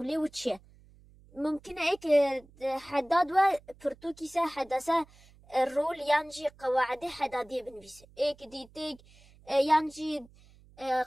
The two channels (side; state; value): right; noise; hum, 26 dB below the sound